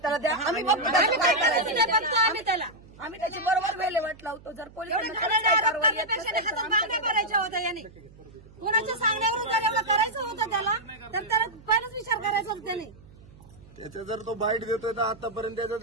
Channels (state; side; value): noise; right; hum, 23 dB below the sound